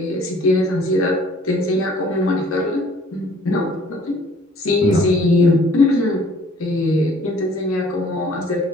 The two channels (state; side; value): normal; both; correlation 0.56